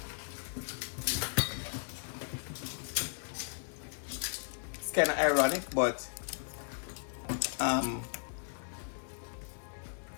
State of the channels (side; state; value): right; silent; digital silence